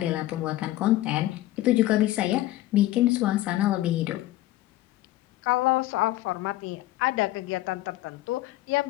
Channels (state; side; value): quieter; right; 16.0 dB